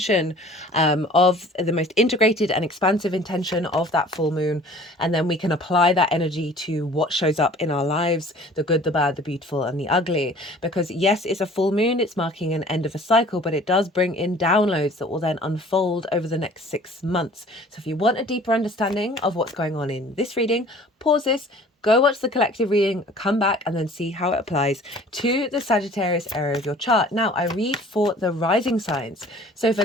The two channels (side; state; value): both; normal; correlation 0.49